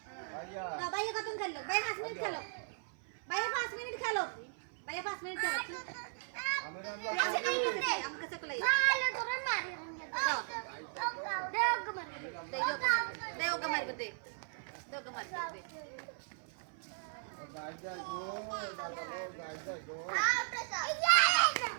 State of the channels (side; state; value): left; silent; 53 dB below the other